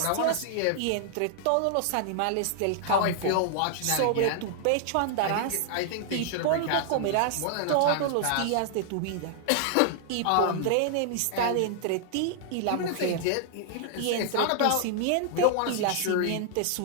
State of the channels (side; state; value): both; different; correlation -0.01